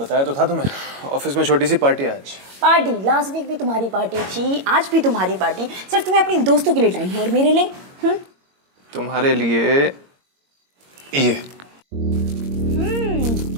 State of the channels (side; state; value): left; late; 22 ms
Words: तो था तुम्हें, ऑफिस में छोटी सी पार्टी है आज। पार्टी? लास्ट वीक भी तुम्हारी पार्टी थी, आज भी तुम्हारी पार्टी। सिर्फ तुम्हें अपने दोस्तों के लिए टाइम है और मेरे लिए? तुम्हारे लिए ये